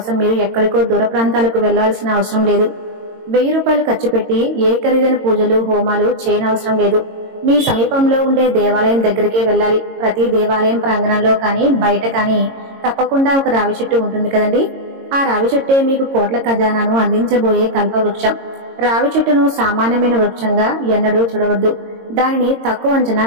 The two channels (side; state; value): left; late; 22 ms